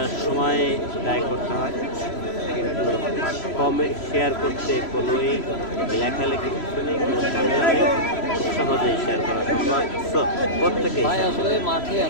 সময় ব্যয় করতে হয়, কিন্তু কমেন্ট শেয়ার করতে কোনোই লেখালেখি কিছু নেই, কোনো ঝামেলা নেই। খুব সহজেই শেয়ার করা সম্ভব। সো প্রত্যেকে ভাই আসলে মাঠে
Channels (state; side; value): late; right; 3.0 ms